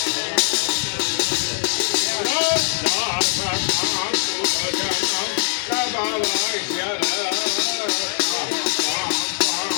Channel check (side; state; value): right; silent; 64 dB below the other